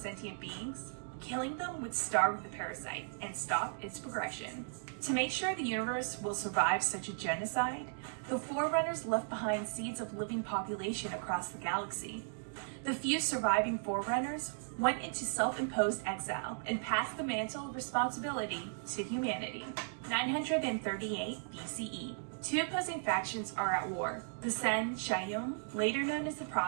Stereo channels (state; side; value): silent; left; digital silence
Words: beings, killing them would starve the parasite and stop its progression. To make sure the universe will survive such a genocide, the Forerunners left behind seeds of living population across the galaxy. The few surviving Forerunners went into self-imposed exile and passed the mantle of responsibility to humanity. 938 BCE. Two opposing factions are at war. The Sen Shayum, later known as the